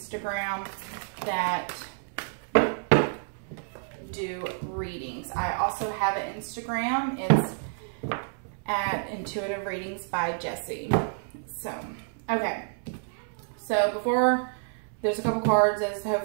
that do readings. I also have an Instagram. It's at Intuitive Readings by Jessie. So, okay. So before, there's a couple cards, as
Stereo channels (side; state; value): left; silent; 59 dB below the other